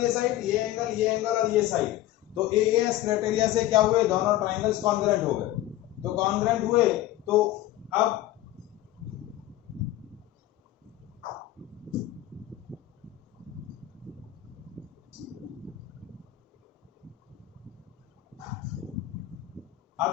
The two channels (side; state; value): right; quieter; 14.7 dB